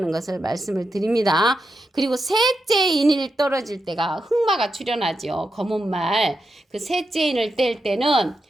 것을 말씀을 드립니다. 그리고 셋째 인이 떨어질 때가 흑마가 출현하죠. 검은 말. 그 셋째 인을 뗄 때는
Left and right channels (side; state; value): both; normal; correlation 0.87